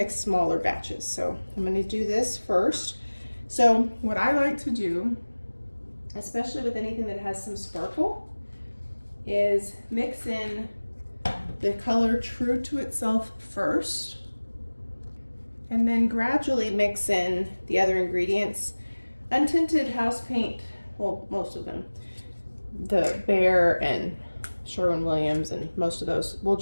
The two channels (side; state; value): both; inverted; correlation -1.00